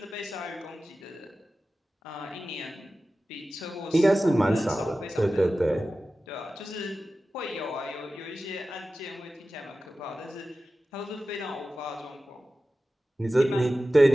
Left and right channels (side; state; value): both; normal; correlation 0.95